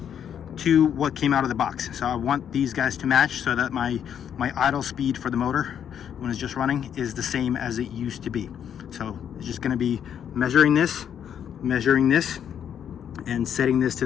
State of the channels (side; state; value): right; quieter; 8.8 dB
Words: what came out of the box. So I want these guys to match so that my idle speed for the motor when it's just running is the same as it used to be. So it's just going to be measuring this, and setting this to